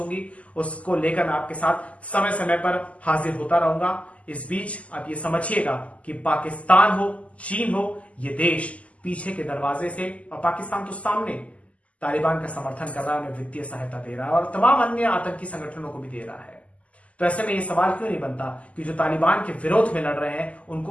उसको लेकर मैं आपके साथ समय समय पर हाजिर होता रहूंगा। इस बीच आप ये समझिएगा कि पाकिस्तान हो, चीन हो, ये देश पीछे के दरवाजे से, और पाकिस्तान तो सामने तालिबान का समर्थन कर रहा है, उन्हें वित्तीय सहायता दे रहा है और तमाम अन्य आतंकी संगठनों को भी दे रहा है। तो ऐसे में ये सवाल क्यों नहीं बनता कि जो तालिबान के विरोध में लड़ रहे हैं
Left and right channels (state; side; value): late; right; 0.067 ms